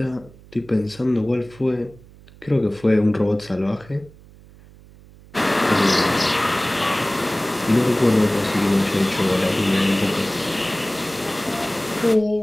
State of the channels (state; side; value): noise; right; hum, 23 dB below the sound